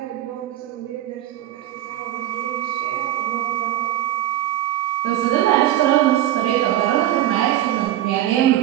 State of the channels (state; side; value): quieter; left; 13.1 dB